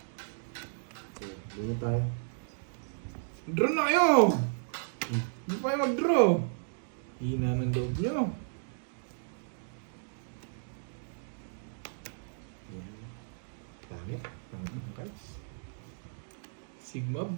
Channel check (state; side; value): silent; left; digital silence